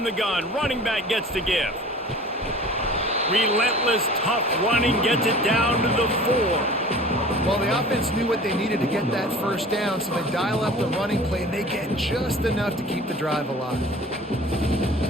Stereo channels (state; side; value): normal; both; correlation 0.43